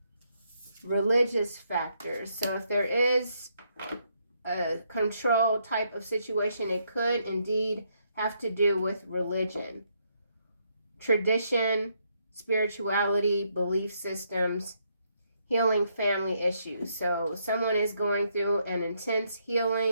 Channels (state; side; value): inverted; both; correlation -0.75